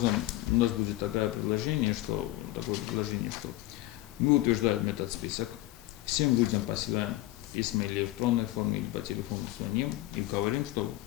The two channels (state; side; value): quieter; right; 17.2 dB